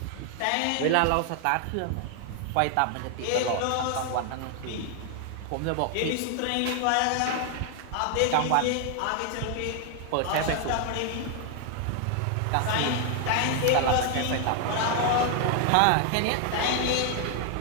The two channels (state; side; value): different; both; correlation 0.00